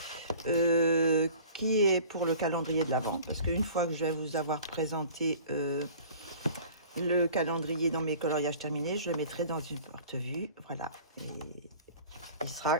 qui est pour le calendrier de l'Avent, parce qu'une fois que je vais vous avoir présenté le calendrier dans mes coloriages terminés, je le mettrai dans une porte-vue, voilà, et il sera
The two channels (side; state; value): both; inverted; correlation -0.45